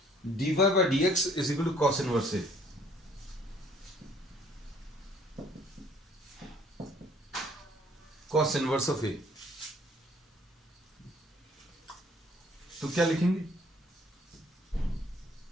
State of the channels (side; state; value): both; normal; correlation 0.59